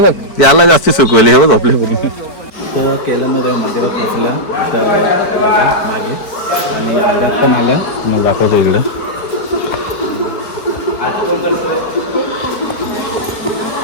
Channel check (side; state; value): right; late; 4.6 ms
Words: याला जास्त सुकवले हे बघ आपल्या. तर केल्यामध्ये मंदिरात पोचल्या तर बघा मागे आणि मंदिरात पण आलं. मग दाखवतो इकडं.